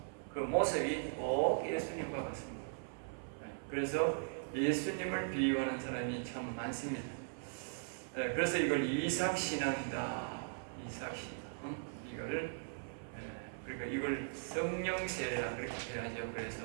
그 모습이 꼭 예수님과 같습니다. 그래서 예수님을 비유하는 사람이 참 많습니다. 그래서 이걸 이삭 신앙이다. 이삭 신앙. 그러니까 이걸 성령세례라 그렇게 해야죠.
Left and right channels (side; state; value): left; silent; 52 dB below the other